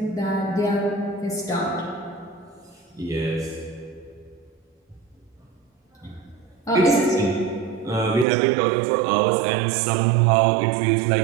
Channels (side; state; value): left; drops out; at 8.2 s